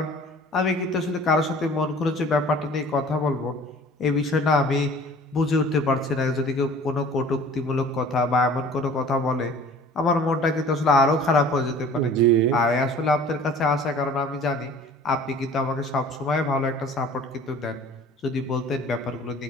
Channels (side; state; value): both; normal; correlation 0.47